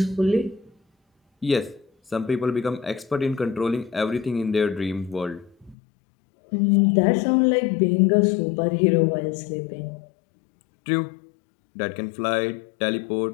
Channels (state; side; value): drops out; right; at 5.8 s